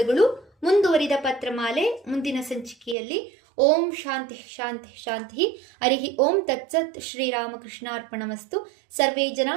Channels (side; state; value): left; drops out; at 3.0 s